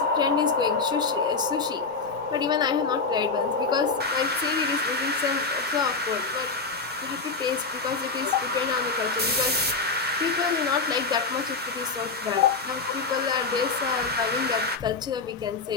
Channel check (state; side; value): quieter; right; 4.3 dB